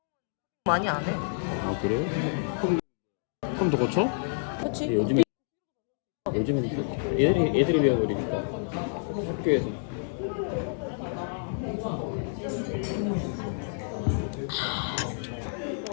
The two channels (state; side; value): silent; right; digital silence